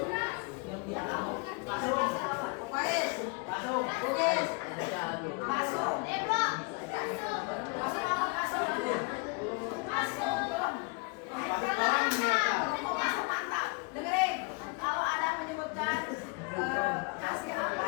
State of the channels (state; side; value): quieter; right; 31.0 dB